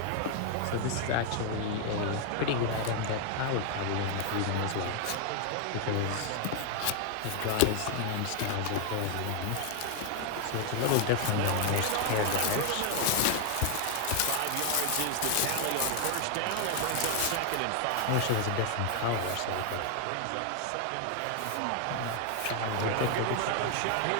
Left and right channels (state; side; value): different; both; correlation 0.00